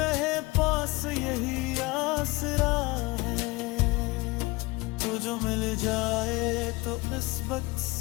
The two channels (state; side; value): quieter; right; 23.1 dB